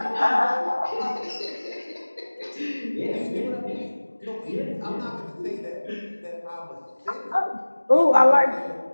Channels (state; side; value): inverted; both; correlation -1.00